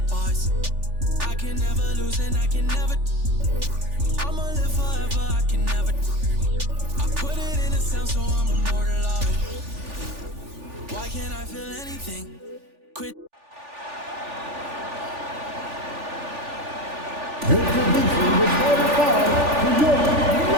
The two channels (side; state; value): left; late; 3.4 ms